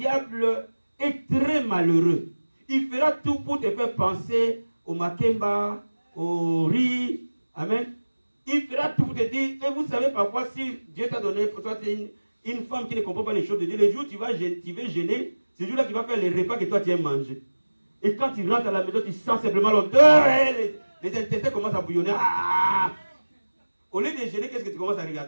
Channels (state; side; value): inverted; both; correlation -1.00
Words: est très malheureux. Il fera tout pour te faire penser au makemba, au riz. Amen. Il fera tout pour te dire, et vous savez parfois, si Dieu t'a donné, pour toi, une femme qui ne comprend pas les choses de Dieu, le jour où tu vas jeûner, c'est le jour-là qu'il va faire les repas que toi tu aimes manger. Et quand tu rentres à la maison, tu sens simplement l'odeur, les intestins commencent à bouillonner. Ah! Au lieu de jeûner, qu'est-ce que tu commences à